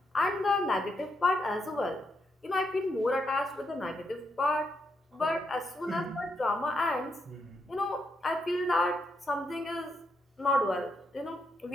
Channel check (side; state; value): both; normal; correlation 0.80